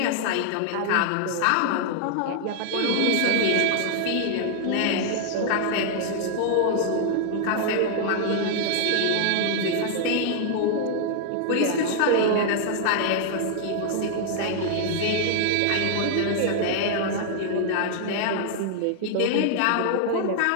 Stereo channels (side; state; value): both; different; correlation 0.00